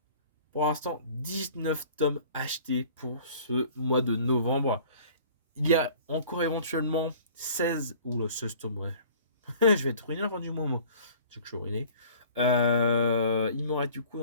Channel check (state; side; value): inverted; both; correlation -0.49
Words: Pour l'instant, 19 tomes achetés pour ce mois de novembre. Il y a encore éventuellement 16, ou le 16 tomes, ouais. Je vais être ruiné à la fin du moment. C'est que je suis ruiné. Il m'aurait du coup